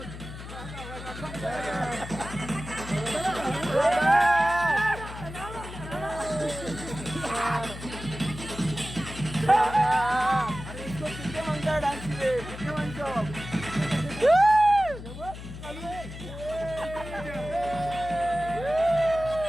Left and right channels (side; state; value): left; noise; hum, 11 dB below the sound